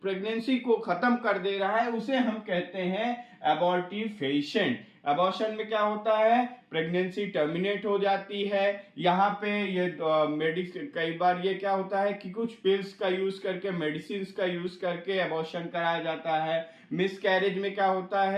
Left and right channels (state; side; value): identical; both; correlation 1.00